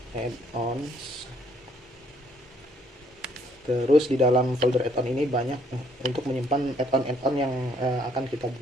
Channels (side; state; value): both; normal; correlation 0.66